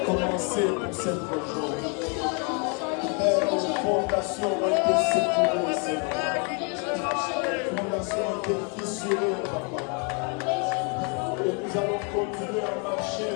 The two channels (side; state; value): right; quieter; 36.6 dB